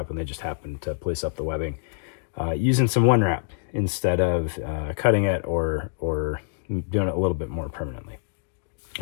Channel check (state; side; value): silent; right; digital silence